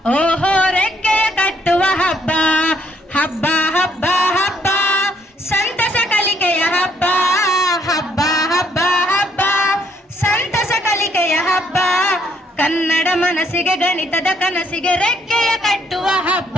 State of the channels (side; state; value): both; normal; correlation 0.69